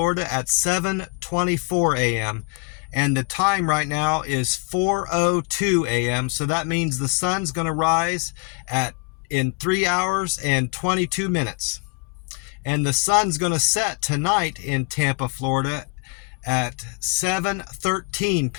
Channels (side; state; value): right; quieter; 33.3 dB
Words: at 7:24 a.m. and the time right now is 4:02 a.m. so that means the sun's going to rise in 3 hours and 22 minutes. And the sun's going to set tonight in Tampa, Florida at 7:13